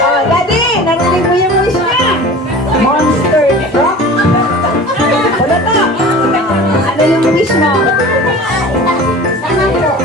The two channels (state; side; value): normal; both; correlation 0.39